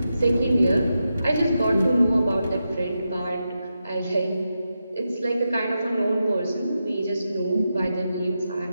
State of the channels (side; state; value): both; inverted; correlation -0.88